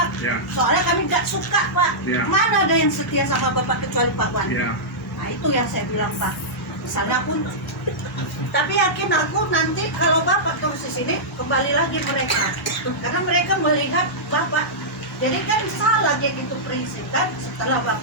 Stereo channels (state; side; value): normal; both; correlation -0.13